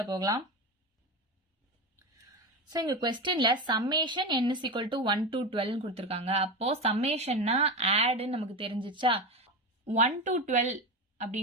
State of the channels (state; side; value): normal; both; correlation 0.20